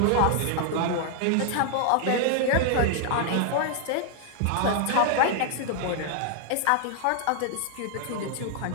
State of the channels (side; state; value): both; different; correlation 0.00